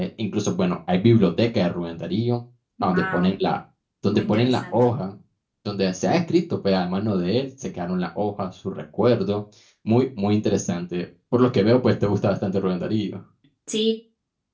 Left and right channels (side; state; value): both; identical; correlation 1.00